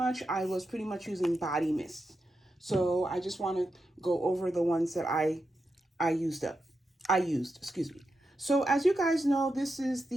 I was pretty much using body mist. So I just want to go over the ones that I used, excuse me. So as you guys know, this is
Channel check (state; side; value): normal; both; correlation 0.87